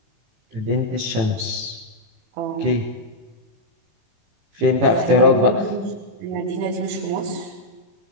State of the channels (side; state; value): left; late; 18 ms